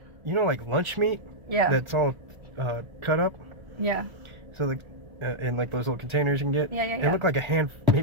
you know, like lunch meat? Yeah. That's all cut up. Yeah. So, like, in like those little containers you can get. Yeah. It looked like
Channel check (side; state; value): left; late; 1.4 ms